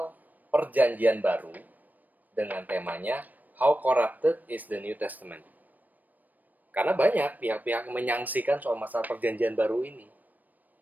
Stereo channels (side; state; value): left; late; 0.084 ms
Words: perjanjian baru dengan temanya How Corrupted is the New Testament. Karena banyak pihak-pihak menyangsikan soal masalah perjanjian baru ini.